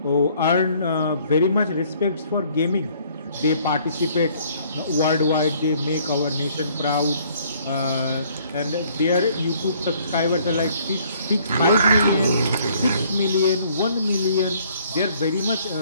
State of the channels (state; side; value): inverted; both; correlation -0.61